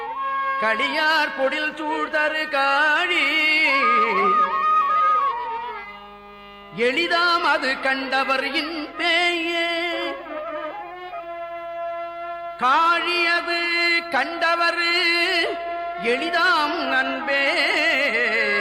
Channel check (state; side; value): identical; both; correlation 1.00